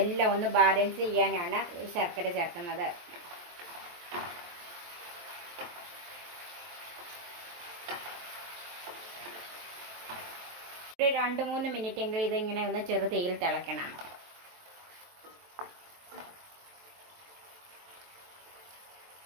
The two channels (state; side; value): late; left; 23 ms